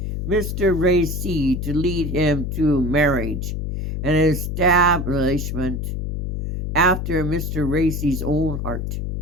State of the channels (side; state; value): left; noise; hum, 3 dB below the sound